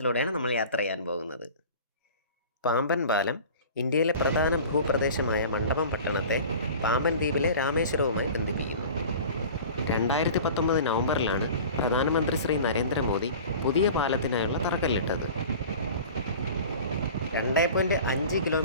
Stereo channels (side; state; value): both; inverted; correlation -0.40